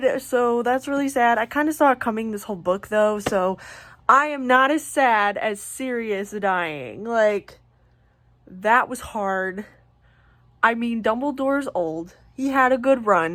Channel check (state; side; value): identical; both; correlation 1.00